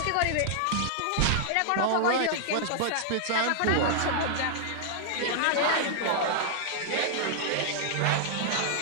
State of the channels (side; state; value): both; different; correlation -0.01